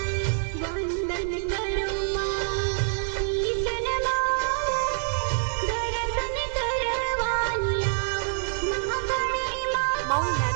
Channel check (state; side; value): silent; left; digital silence